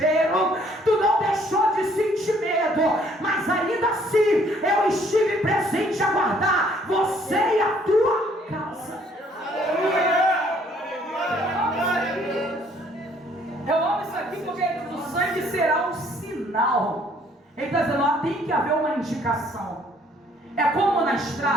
tu não deixou de sentir medo, mas ainda assim eu estive presente a guardar você e a tua casa. Eu amo isso aqui porque o sangue será um sinal. Ele está dizendo, ó, tem que haver uma indicação. É como na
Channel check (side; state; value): both; normal; correlation 0.62